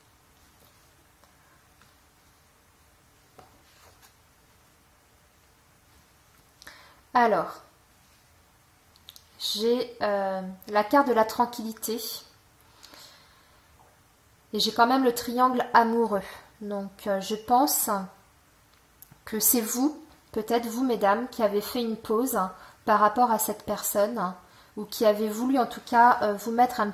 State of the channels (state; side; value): identical; both; correlation 1.00